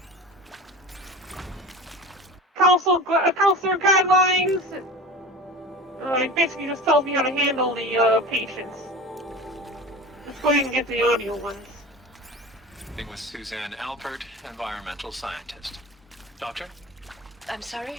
Counselor guidelines. It basically just tells me how to handle the patients. Let's go ahead and get the audio ones. With Suzanne Alpert, environmental scientist. Doctor? I'm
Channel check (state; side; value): normal; both; correlation 0.33